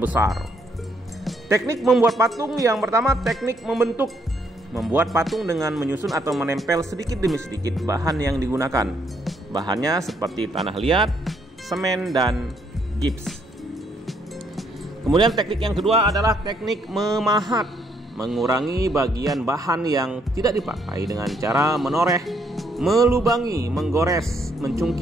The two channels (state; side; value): normal; both; correlation 0.71